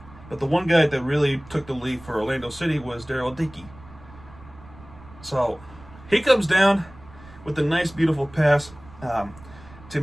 the one guy that really took the lead for Orlando City was Daryl Dickey. So he comes down with a nice, beautiful pass to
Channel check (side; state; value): right; noise; rumble, 20 dB below the sound